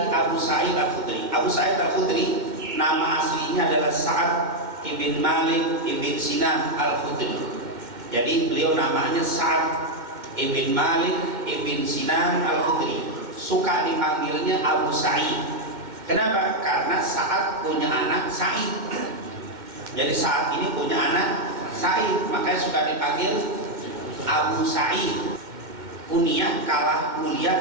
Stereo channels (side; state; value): left; late; 2.1 ms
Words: Abu Sa'id Al-Khudri. Abu Sa'id Al-Khudri nama aslinya adalah Sa'ad ibn Malik ibn Sinan Al-Khudri. Jadi beliau namanya Sa'ad ibn Malik ibn Sinan Al-Khudri. Suka dipanggilnya Abu Sa'id Kenapa? Karena Sa'ad punya anak Sa'id. Jadi saat ini punya anak Sa'id, makanya suka dipanggil Abu Sa'id. Kunyah kalah